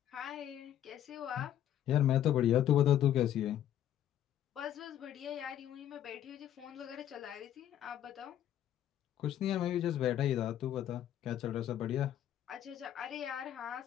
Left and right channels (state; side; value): quieter; right; 11.1 dB